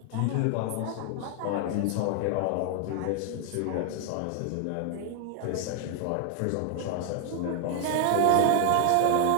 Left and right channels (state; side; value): different; both; correlation 0.00